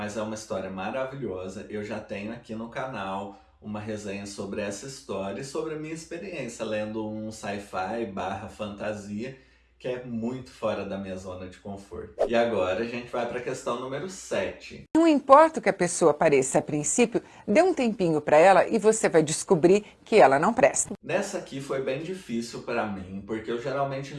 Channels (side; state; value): both; identical; correlation 1.00